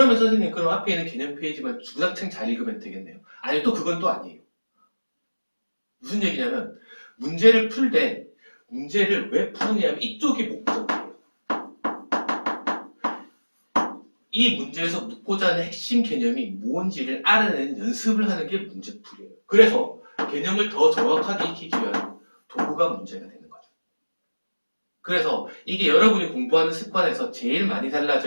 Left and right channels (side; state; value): both; inverted; correlation -1.00